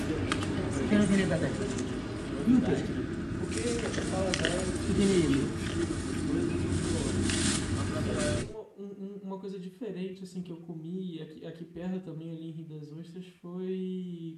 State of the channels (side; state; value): both; identical; correlation 1.00